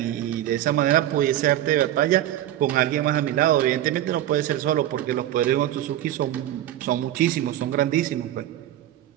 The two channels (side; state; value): left; quieter; 12.8 dB